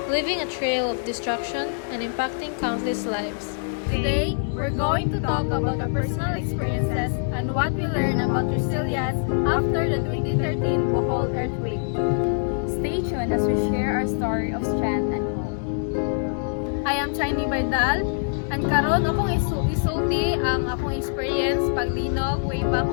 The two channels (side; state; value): right; silent; digital silence